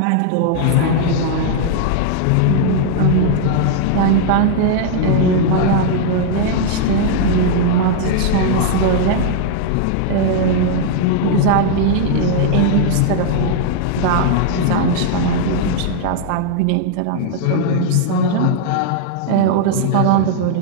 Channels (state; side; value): different; both; correlation 0.00